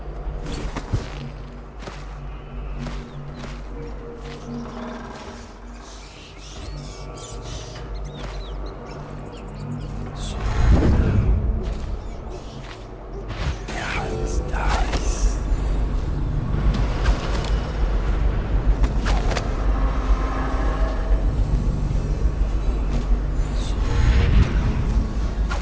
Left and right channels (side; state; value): both; identical; correlation 1.00